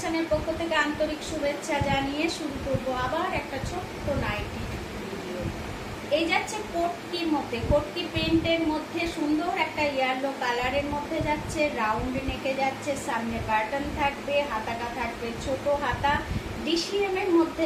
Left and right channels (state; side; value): identical; both; correlation 1.00